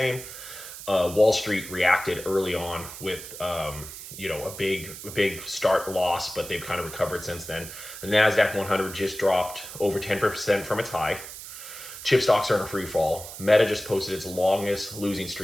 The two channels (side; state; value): right; noise; hiss, 12 dB below the sound